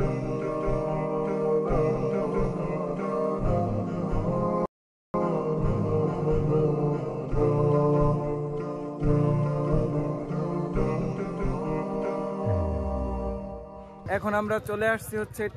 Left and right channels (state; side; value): identical; both; correlation 1.00